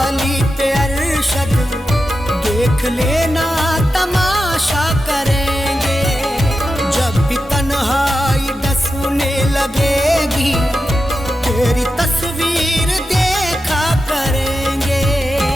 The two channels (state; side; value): normal; both; correlation 0.90